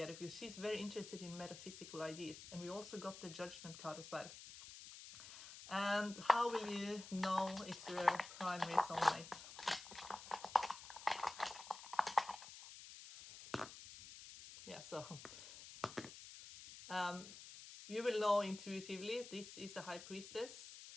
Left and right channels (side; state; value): left; noise; hiss, 13 dB below the sound